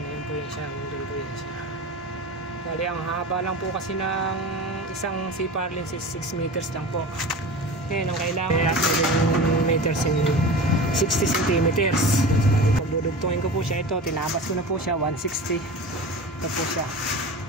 Ayun po yun siya. Ayun po yun siya. Bali ang haba lang po kasi ng isang C-par lens is 6 meters lang po. Ngayon ang kailangan 7 meters in 60 centimeters. Bali pag dudugtongin ko po siya, ito tinabas ko na po siya 160. Ito po siya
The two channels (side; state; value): both; normal; correlation 0.32